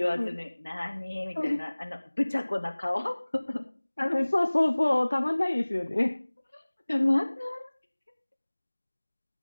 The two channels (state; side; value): inverted; both; correlation -1.00